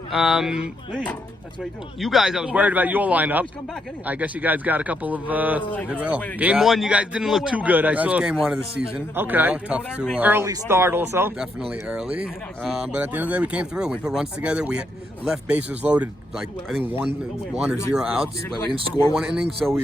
You guys, I was worried about your lineup. I guess you guys got a couple of. Game 1, you guys didn't look too good. I saw. Game 1 of the season. Okay. You know, tough to. Early start also. Definitely early. But at the end of the day, we came through. We put runs together. We left bases loaded, like I think one or 0 outs. But we didn't score 1 inning, so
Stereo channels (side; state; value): both; normal; correlation 0.78